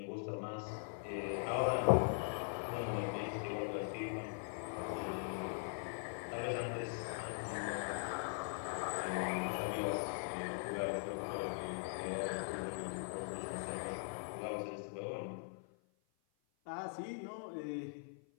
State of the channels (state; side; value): silent; right; 50 dB below the other